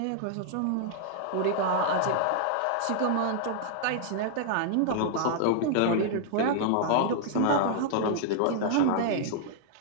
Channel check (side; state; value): both; different; correlation -0.01